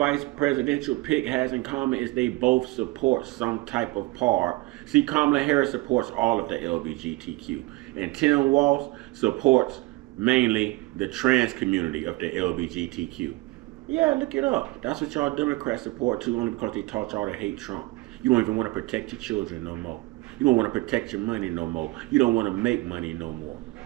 presidential pick has in common is they both support some type of part. See, Kamala Harris supports all of the LGBTQ, and Tim Walz supports mainly the trans community of the LGBTQ. Yeah, look it up. That's what y'all Democrats support too, only because they taught y'all to hate Trump. You don't even want to protect your children no more. You don't want to protect your money no more. You don't want to make money no more.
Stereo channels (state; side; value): quieter; left; 21.7 dB